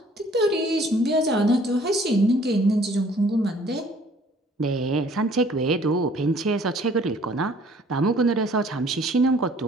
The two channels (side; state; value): both; normal; correlation 0.56